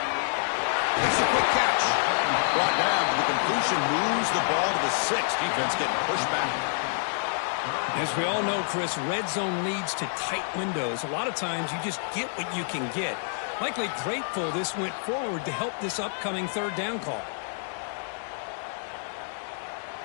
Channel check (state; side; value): silent; right; digital silence